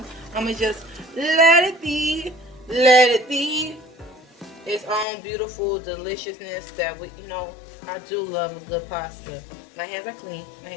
I'm going to just let it be its own beautiful deliciousness that we, I do love a good pasta. My hands are clean.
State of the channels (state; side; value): drops out; right; at 5.1 s